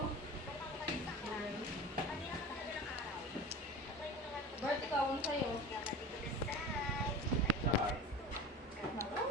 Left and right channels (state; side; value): normal; both; correlation 0.33